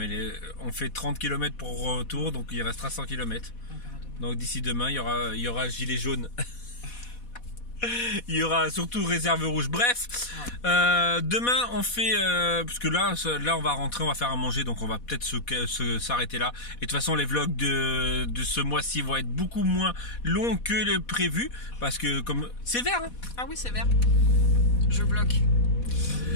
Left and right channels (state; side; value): late; right; 4.1 ms